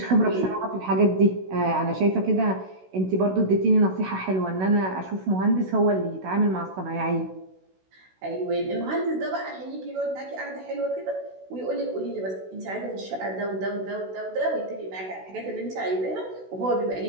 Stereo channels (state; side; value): late; left; 16 ms